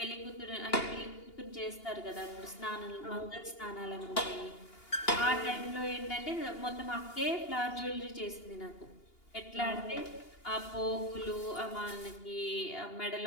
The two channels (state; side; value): late; right; 2.8 ms